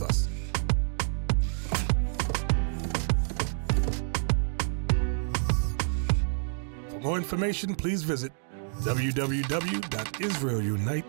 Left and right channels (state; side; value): silent; left; digital silence